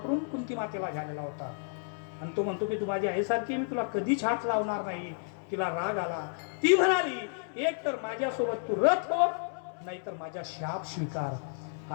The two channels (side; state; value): right; silent; 57 dB below the other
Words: कुंती मातेला झालेला होता आणि तो म्हणतो की तू माझी आईसारखी, मी तुला कधीच हात लावणार नाही. तिला राग आला. ती म्हणाली एक तर माझ्यासोबत तू रथ हो, नाहीतर माझा शाप स्वीकार.